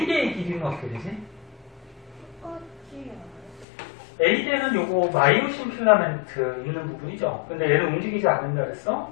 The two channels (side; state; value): right; drops out; at 3.7 s